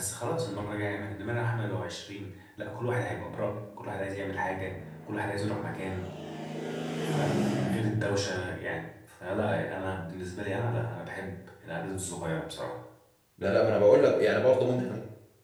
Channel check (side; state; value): both; identical; correlation 1.00